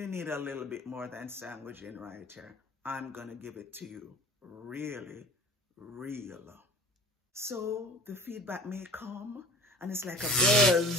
need a little bit more than sandwiching right here. I'm gonna give it to you really real. So the feedback may come and it's like a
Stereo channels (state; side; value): normal; both; correlation 0.44